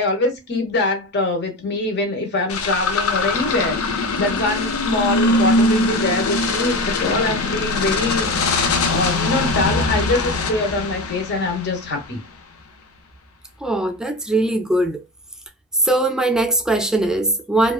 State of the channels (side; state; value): both; normal; correlation 0.27